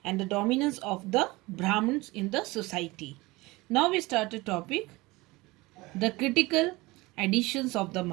and the dominance of the Brahmins in the society. Now we start a topic, the critical editions of the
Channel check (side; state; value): left; quieter; 21.7 dB